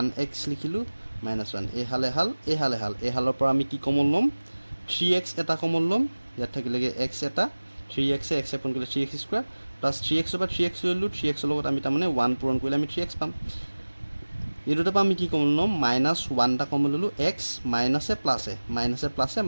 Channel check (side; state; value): both; inverted; correlation -1.00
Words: লিখিলোঁ মাইনাছ 1। এইহালৰ পৰা আমি কি কমন ল'ম, 3x এটা কমন ল'ম, ইয়াত থাকিলেগৈ x এটা, 3x x পূৰণ কৰিলে 3x স্কুৱাৰ প্লাছ 3x পৰা 3x ল'লোঁ, 3x লগত আমি তাৰমানে 1 পূৰণ কৰিলে আমি 3x পাম। এই দুটাৰ পৰা আমি কি কমন ল'ম, মাইনাছ 1 এটা কমন ল'লোঁ, x মাইনাছে প্লাছে